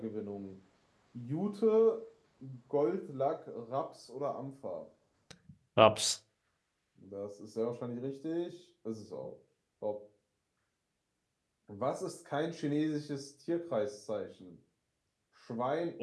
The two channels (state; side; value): identical; both; correlation 1.00